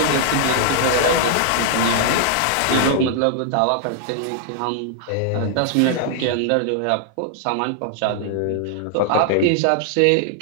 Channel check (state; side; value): different; both; correlation 0.00